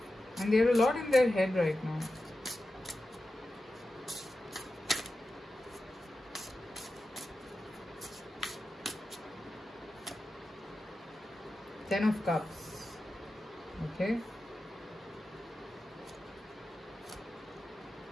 And there are a lot in their head right now. Ten of Cups. Okay.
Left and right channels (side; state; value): both; normal; correlation 0.92